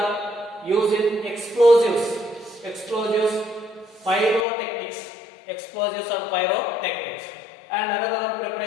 use in explosives, pyrotechnics, and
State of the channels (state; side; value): drops out; right; at 4.5 s